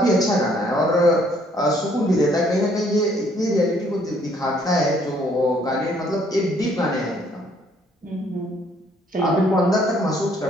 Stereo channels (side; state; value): both; normal; correlation 0.64